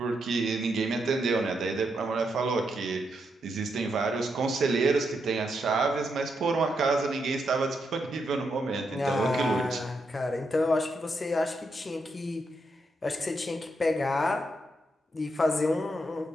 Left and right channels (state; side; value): normal; both; correlation 0.81